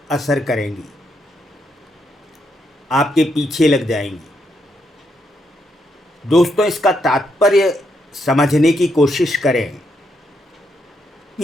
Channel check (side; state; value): both; normal; correlation 0.78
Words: असर करेंगी, आपके पीछे लग जाएंगी। दोस्तों, इसका तात्पर्य समझने की कोशिश करें।